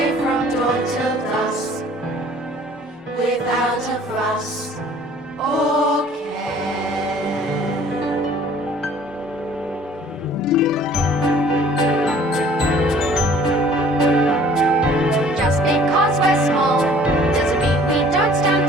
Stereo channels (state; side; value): normal; both; correlation 0.53